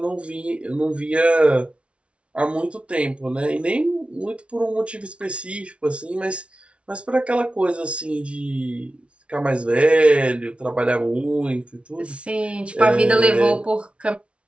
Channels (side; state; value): left; late; 0.060 ms